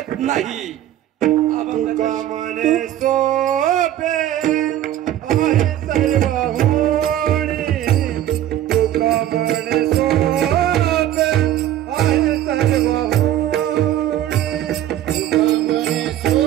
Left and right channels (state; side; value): quieter; left; 12.4 dB